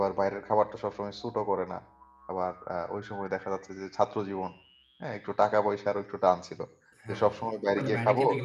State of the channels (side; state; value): both; identical; correlation 1.00